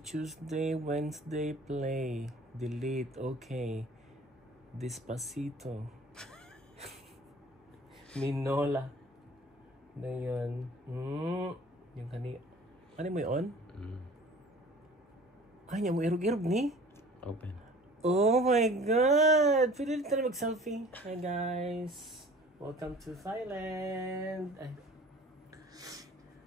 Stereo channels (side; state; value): both; normal; correlation 0.46